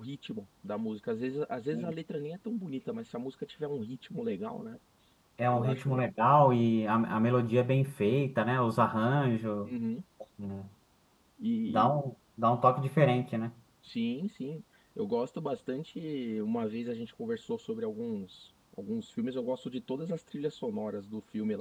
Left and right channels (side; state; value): both; identical; correlation 1.00